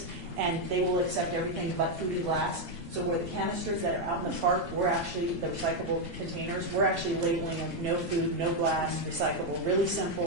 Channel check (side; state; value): left; late; 2.0 ms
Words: and they will accept everything but food and glass. So where the canisters that are out in the park, we're actually, the recyclable containers, we're actually labeling them no food, no glass, recyclable, really